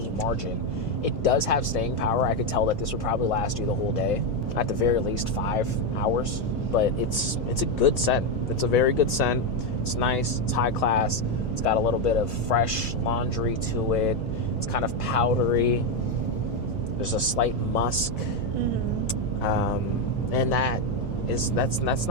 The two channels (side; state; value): both; normal; correlation 0.06